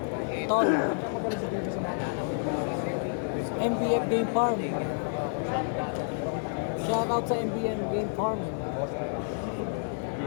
Tol. MBF Game Farm. Shoutout sa MBM Game Farm.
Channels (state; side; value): silent; right; digital silence